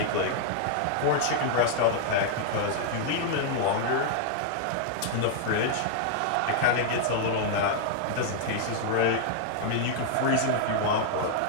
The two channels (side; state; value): both; different; correlation -0.01